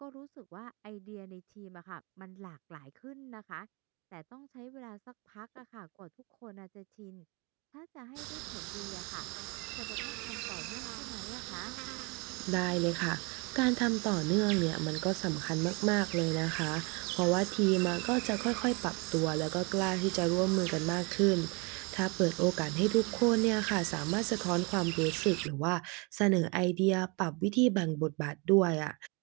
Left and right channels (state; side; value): quieter; left; 30.0 dB